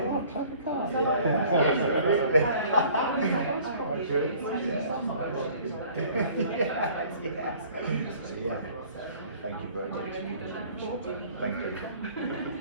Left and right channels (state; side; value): inverted; both; correlation -0.52